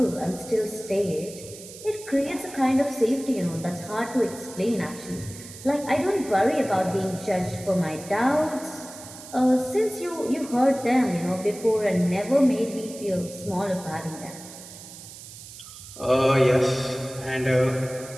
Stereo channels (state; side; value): noise; right; hiss, 15 dB below the sound